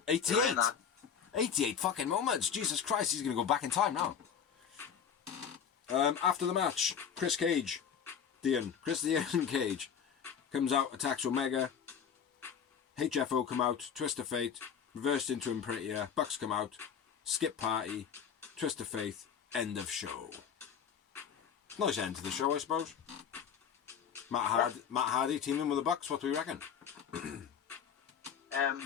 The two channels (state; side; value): quieter; right; 7.6 dB